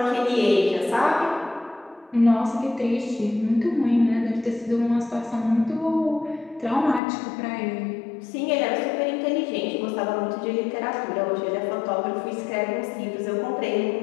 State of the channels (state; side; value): drops out; right; at 7.0 s